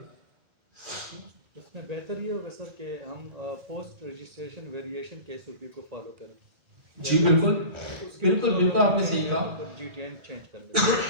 इसमें बेहतर ये होगा सर कि हम पोस्ट रजिस्ट्रेशन वेरिएशन के SOP को फॉलो करें। जी बिल्कुल बिल्कुल बिल्कुल आपने सही कहा। GTIN चेंज कर लें।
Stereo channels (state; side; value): late; left; 1.9 ms